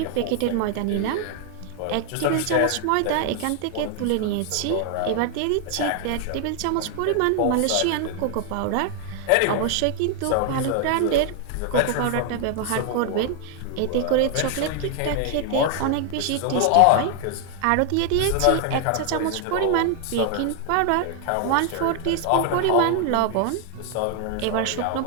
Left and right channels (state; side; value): different; both; correlation 0.00